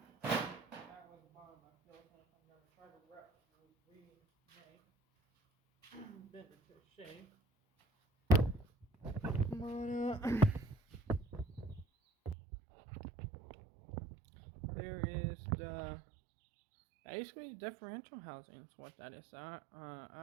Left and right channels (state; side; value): drops out; left; at 12.4 s